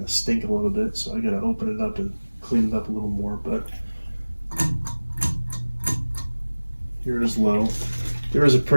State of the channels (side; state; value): both; inverted; correlation -1.00